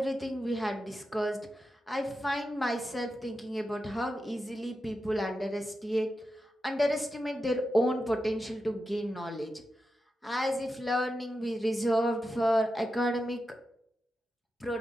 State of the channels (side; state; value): both; normal; correlation 0.89